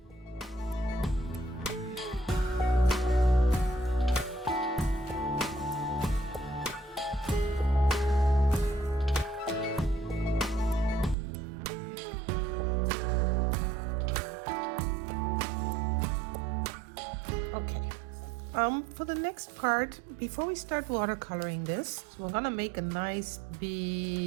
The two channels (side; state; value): left; drops out; at 11.2 s